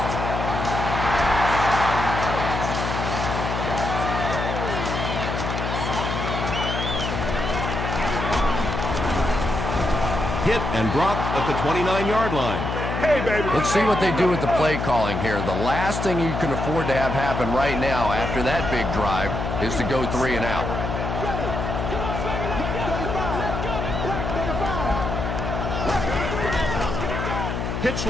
Hit and dropped at the 29-yard line. Hey, baby. Let's see what they do with the play calling here. The last thing you can afford to have happen right now after that big drive is to go 3 and out. Pitch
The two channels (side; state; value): left; noise; hum, 3 dB below the sound